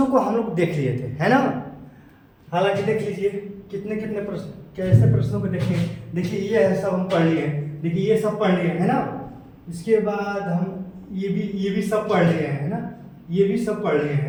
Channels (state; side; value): identical; both; correlation 1.00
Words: को हम लोग देख लिए थे, है ना। हालांकि देख लीजिए कितने कितने प्रश्न, कैसे प्रश्नों को देखेंगे। देखिए ये है, सब हम पढ़ लिए हैं। देखिए ये सब पढ़ लिए है ना। इसके बाद हम ये भी सब पढ़ लिए हैं, है ना। ये भी सब पढ़ लिए